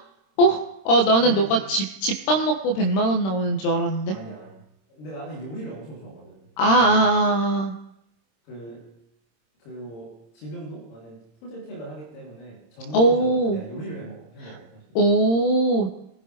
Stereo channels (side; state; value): right; late; 26 ms